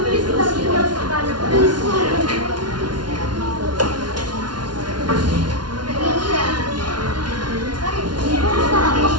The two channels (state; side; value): late; left; 0.70 ms